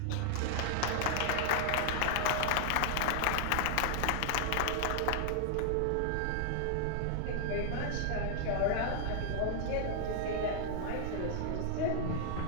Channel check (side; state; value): both; different; correlation 0.00